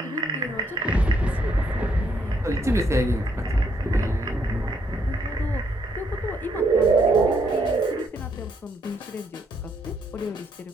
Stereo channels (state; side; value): normal; both; correlation 0.73